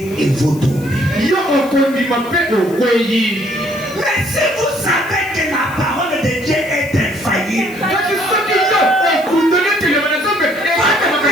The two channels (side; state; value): left; noise; hiss, 20 dB below the sound